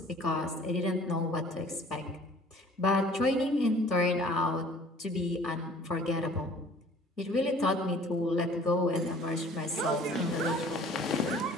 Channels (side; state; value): both; normal; correlation 0.51